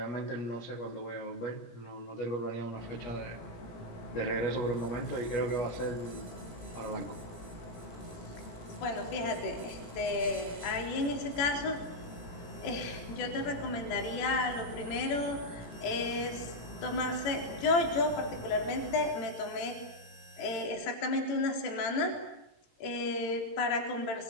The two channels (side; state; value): right; late; 18 ms